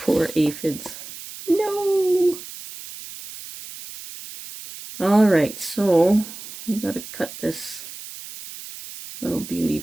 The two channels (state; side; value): noise; right; hiss, 13 dB below the sound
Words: aphids. No! Alright, so we gotta cut this little beauty